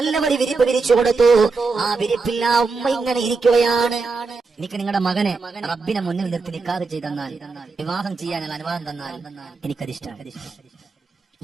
ഒരു വിരിപ്പ് വിരിച്ചു കൊടുത്തു. ആ വിരിപ്പിൽ ആ ഉമ്മ ഇങ്ങനെ ഇരിക്കുകയാണ്. എനിക്ക് നിങ്ങളുടെ മകനെ റബ്ബിനെ മുന്നിൽ നിർത്തി നിക്കാഹ് ചെയ്തെന്നാൽ, വിവാഹം ചെയ്യാനുള്ള അനുവാദം തന്നാൽ എനിക്കതിഷ്ടമാണ്.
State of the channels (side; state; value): left; quieter; 4.3 dB